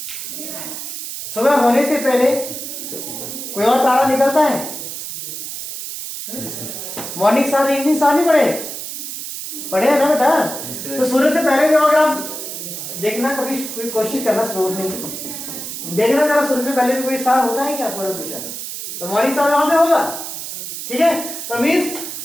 सुबह होने से पहले कोई और तारा निकलता है, मॉर्निंग स्टार इवनिंग स्टार नहीं पढ़े हैं ना बेटा। तो सूर्य से पहले जो अगर आप देखना, कभी कोई कोशिश करना स्लो उठने की, देखना जरा शुरू से पहले भी कोई स्थान होता है क्या पूर्व दिशा में, तो हमारी स्थान वहां पे होगा। ठीक है, तो मीन्स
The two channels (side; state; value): right; noise; hiss, 7 dB below the sound